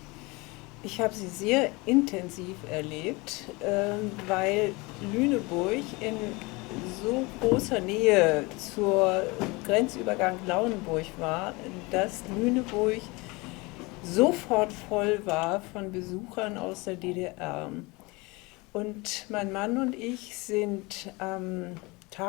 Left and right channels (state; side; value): quieter; right; 25.2 dB